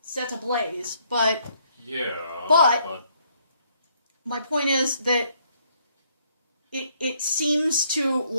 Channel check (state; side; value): inverted; both; correlation -0.68